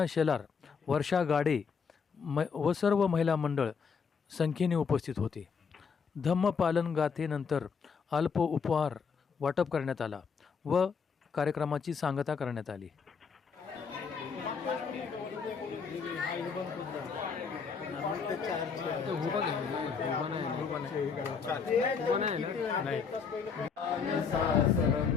शेलार, वर्षा गाडे व सर्व महिला मंडळ संख्येने उपस्थित होते. धम्मपालन गाथेनंतर अल्प उपहार वाटप करण्यात आला व कार्यक्रमाची सांगता करण्यात आली.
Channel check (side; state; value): right; quieter; 5.9 dB